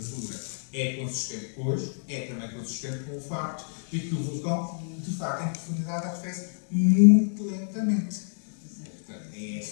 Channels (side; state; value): right; silent; digital silence